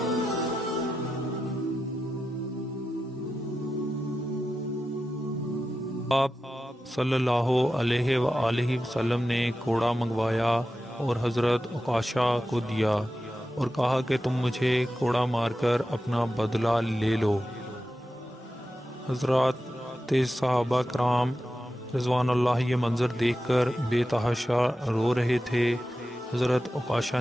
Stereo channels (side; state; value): both; normal; correlation 0.91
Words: آپ صلی اللہ علیہ وآلہ وسلم نے کوڑا منگوایا اور حضرت عکاشہ کو دیا اور کہا کہ تم مجھے کوڑا مار کر اپنا بدلہ لے لو۔ حضرات صحابہ کرام رضوان اللہ یہ منظر دیکھ کر بے تحاشا رو رہے تھے۔ حضرت عکاشہ